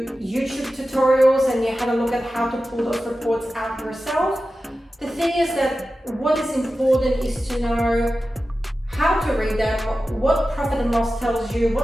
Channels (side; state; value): both; normal; correlation 0.94